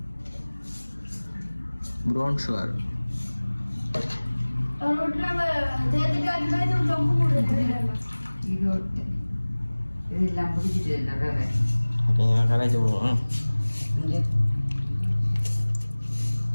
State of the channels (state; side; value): inverted; both; correlation -1.00